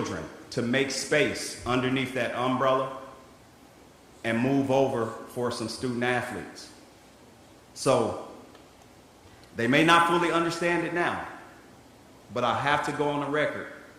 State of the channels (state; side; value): identical; both; correlation 1.00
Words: to make space underneath that umbrella and move over for some student athletes. So they may not fully understand it now, but I have to go on the record